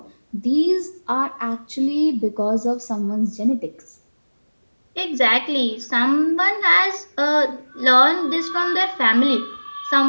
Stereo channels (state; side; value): inverted; both; correlation -1.00